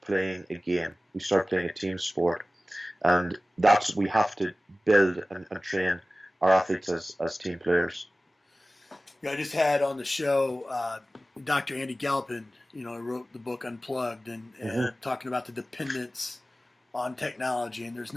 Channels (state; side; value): normal; both; correlation 0.97